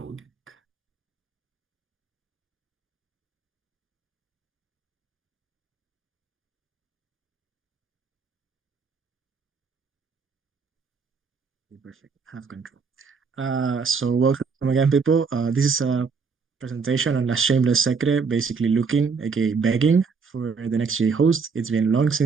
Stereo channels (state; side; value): quieter; left; 5.2 dB